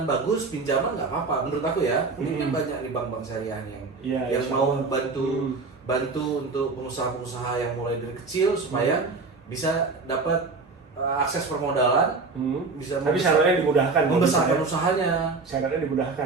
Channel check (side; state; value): left; quieter; 4.1 dB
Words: bagus, pinjaman nggak apa-apa menurut aku ya. Ini kan banyak di bank-bank syariah yang mau bantu untuk pengusaha-pengusaha yang mulai dari kecil supaya bisa dapat akses permodalan, tapi syaratnya dimudahkan, membesarkan usahanya. Syaratnya